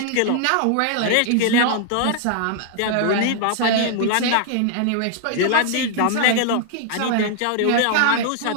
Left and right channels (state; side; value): different; both; correlation -0.01